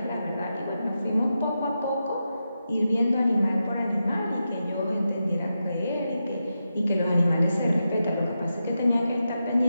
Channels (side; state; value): both; inverted; correlation -0.88